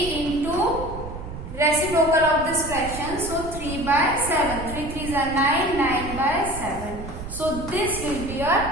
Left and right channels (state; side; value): noise; right; rumble, 10 dB below the sound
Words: reciprocal of this fraction. So 3 by 7. 3 3s are 9. 9 by 7. So this will be your